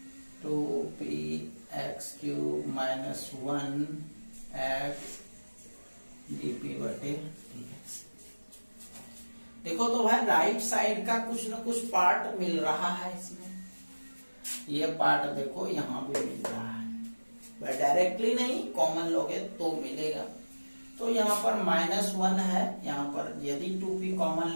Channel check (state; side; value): inverted; both; correlation -1.00